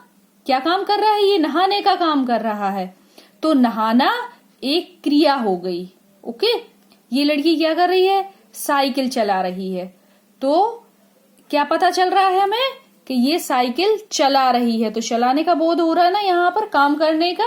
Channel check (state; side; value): identical; both; correlation 1.00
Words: क्या काम कर रहा है? ये नहाने का काम कर रहा है, तो नहाना एक क्रिया हो गई। ओके, ये लड़की क्या कर रही है? साइकिल चला रही है। तो क्या पता चल रहा है हमें? कि ये साइकिल चला रही है। तो चलाने का बोध हो रहा है ना यहाँ पर, काम करने